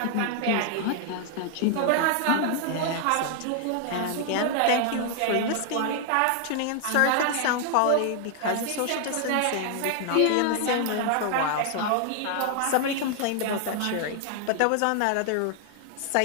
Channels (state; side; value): different; both; correlation 0.00